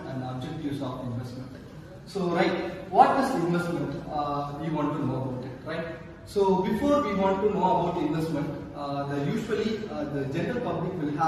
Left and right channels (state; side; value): identical; both; correlation 1.00